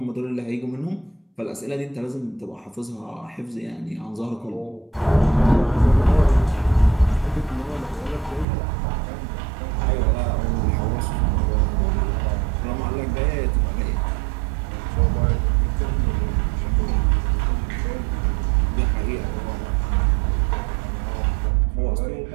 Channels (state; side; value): drops out; left; at 8.5 s